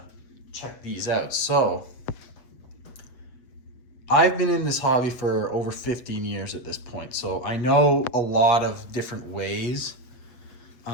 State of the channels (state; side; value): late; right; 7.9 ms